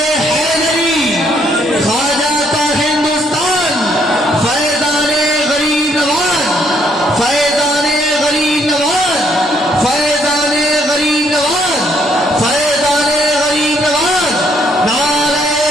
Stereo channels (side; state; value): both; normal; correlation 0.69